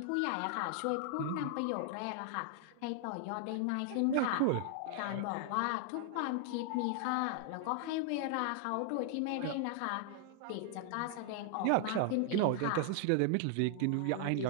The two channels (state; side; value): different; both; correlation 0.00